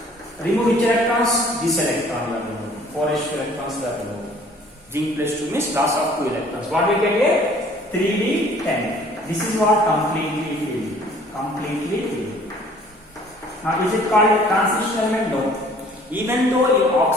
2, remove which electrons? This electron you are removing. 4s2 electrons were removed. Zinc plus 2 means loss of 2 electrons. What we get here? 3d10. This is what? Completely filled. Completely filled. Now is it called a transition element? No. Even though in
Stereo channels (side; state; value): both; normal; correlation 0.54